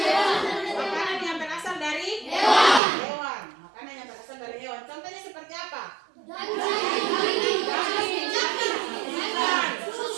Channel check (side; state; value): left; drops out; at 2.8 s